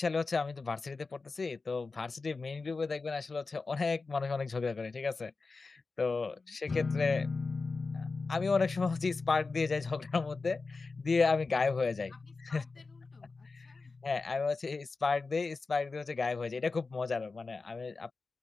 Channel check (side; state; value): right; quieter; 4.0 dB